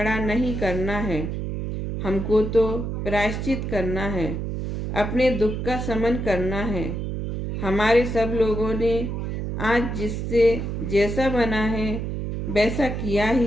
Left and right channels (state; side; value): noise; right; hum, 3 dB below the sound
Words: नहीं करना है, हमको तो प्रायश्चित करना है, अपने दुख का शमन करना है। हमारे सब लोगों ने आज जिससे जैसा बना है वैसा किया